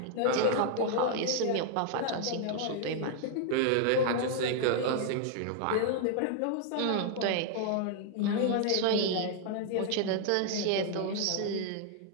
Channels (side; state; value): both; different; correlation 0.00